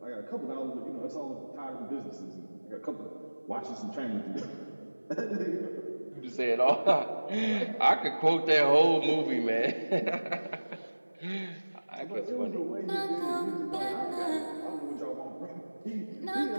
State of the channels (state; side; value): inverted; both; correlation -1.00